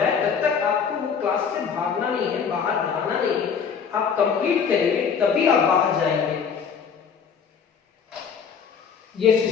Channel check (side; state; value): right; quieter; 6.6 dB